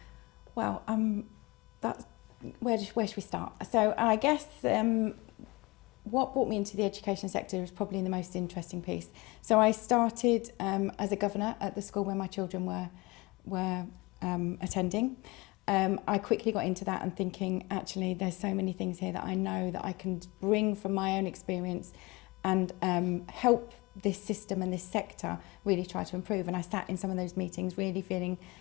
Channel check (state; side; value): quieter; right; 24.0 dB